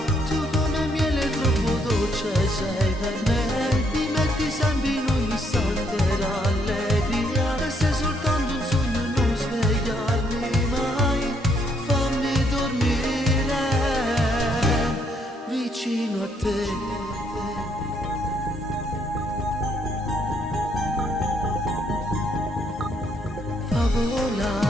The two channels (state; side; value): normal; both; correlation 0.71